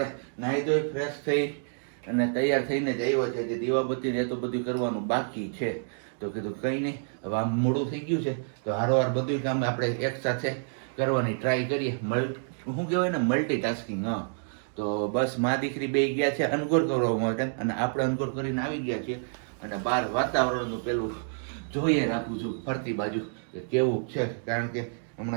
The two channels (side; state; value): left; silent; digital silence